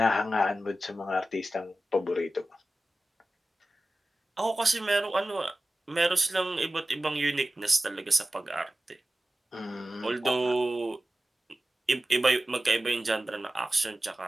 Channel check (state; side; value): normal; both; correlation 0.95